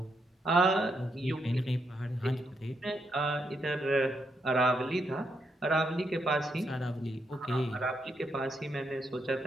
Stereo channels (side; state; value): both; normal; correlation 0.79